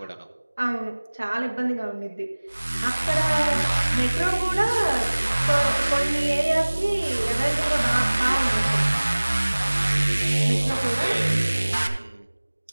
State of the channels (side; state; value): both; inverted; correlation -1.00